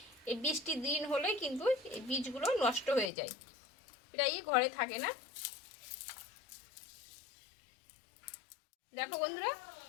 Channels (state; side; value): drops out; right; at 3.1 s